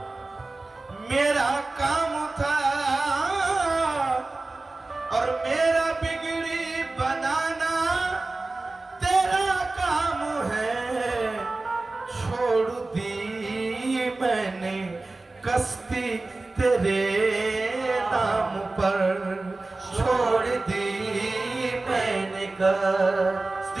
मेरा काम था। और मेरा बिगड़ी बनाना तेरा काम है, छोड़ दी मैंने कश्ती तेरे नाम पर, छोड़ दी मैंने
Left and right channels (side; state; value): left; quieter; 3.2 dB